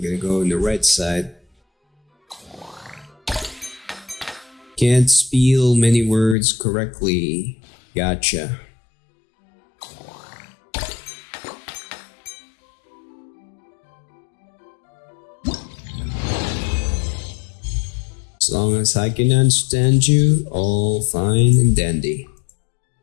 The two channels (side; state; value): right; drops out; at 6.4 s